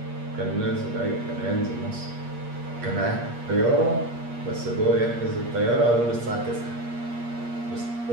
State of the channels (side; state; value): left; late; 8.4 ms